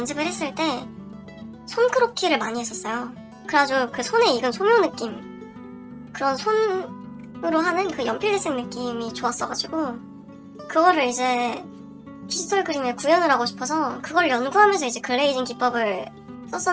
했을 때 손크로키를 많이 했었어요. 그래가지고 그 손에 익은 소묘 느낌, 그런 손으로 하는 그 연필대생 느낌이 좋았어가지고 그거를 이제 디지털 그림에 구현을 하고 싶어서 그걸 연구하면서 이제 글레이징 기법을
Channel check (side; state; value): both; identical; correlation 1.00